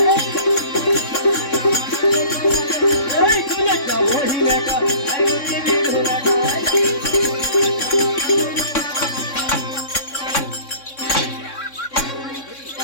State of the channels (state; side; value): late; right; 3.6 ms